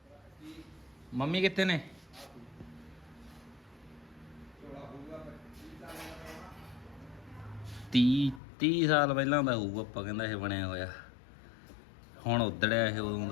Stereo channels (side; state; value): right; drops out; at 8.4 s